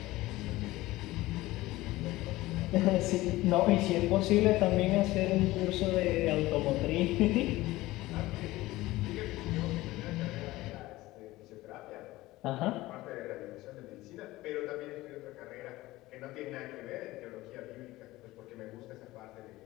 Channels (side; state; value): right; quieter; 18.2 dB